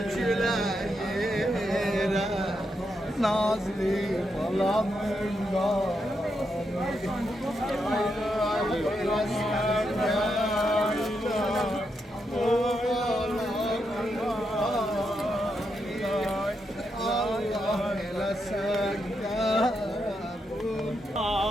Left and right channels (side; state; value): both; normal; correlation 0.82